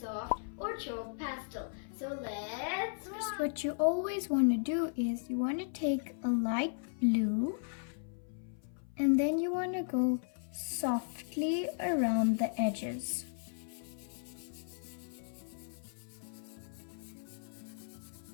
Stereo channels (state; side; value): silent; right; 54 dB below the other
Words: or chalk pastel. So let's First, what you always want to do is you want to take a light blue and then you want to go softly around the edges.